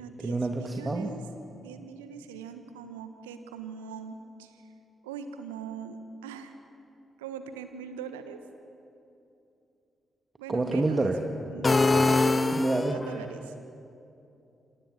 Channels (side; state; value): both; normal; correlation 0.88